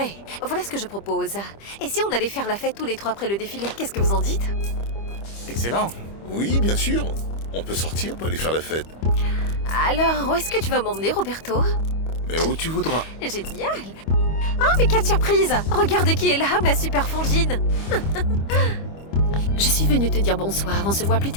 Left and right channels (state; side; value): late; right; 25 ms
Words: Voilà ce que je propose. Et si on allait faire la fête tous les trois après le défilé, qu'est-ce que vous en dites? Excellent. Oui, bien sûr. On peut sortir pour aller faire la fête. Alors, où est-ce que tu vas m'emmener, Roberto? Mais où tu voudras. Génial! Oh, mais quelle surprise! Regarde qui est là, ma super frangine! Je suis venue te dire bonsoir, on se voit plus